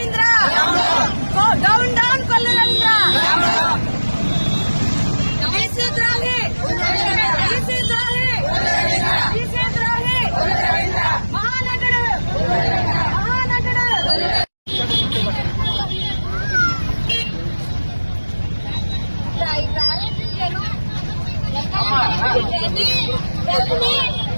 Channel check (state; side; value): inverted; both; correlation -1.00